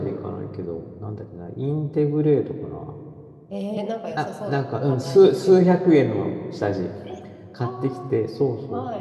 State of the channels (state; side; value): identical; both; correlation 1.00